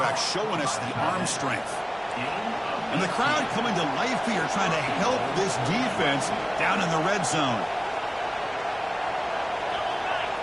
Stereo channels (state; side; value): identical; both; correlation 1.00